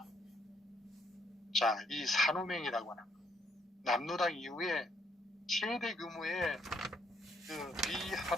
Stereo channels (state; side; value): normal; both; correlation 0.71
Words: 자, 이 산호맹이라고 하는 남노당 이후에 최대 규모의 그